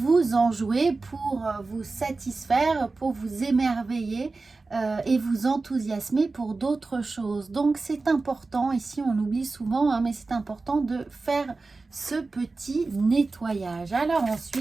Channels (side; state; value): left; quieter; 3.7 dB